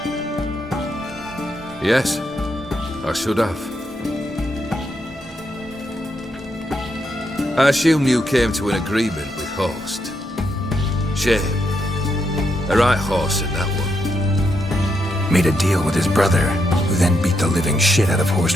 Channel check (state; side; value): normal; both; correlation 0.80